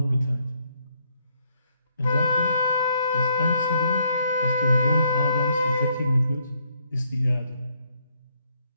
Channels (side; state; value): both; inverted; correlation -0.73